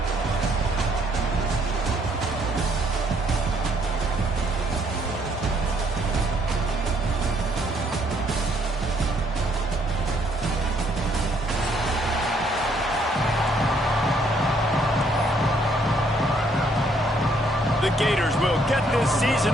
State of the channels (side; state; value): both; normal; correlation 0.68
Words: The Gators will get this